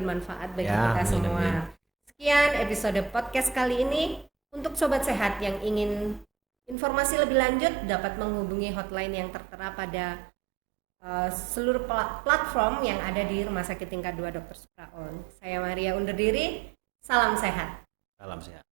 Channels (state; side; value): drops out; left; at 6.8 s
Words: bagi kita semua. Sekian episode podcast kali ini. Untuk Sobat Sehat yang ingin informasi lebih lanjut dapat menghubungi hotline yang tertera pada seluruh platform yang ada di Rumah Sakit Tingkat 2 Dr. Supraun. Saya Maria undur diri. Salam sehat. Salam sehat.